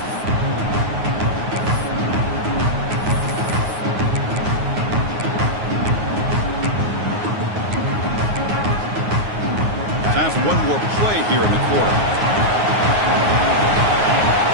Time for one more play here in the quarter.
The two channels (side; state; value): left; late; 9.5 ms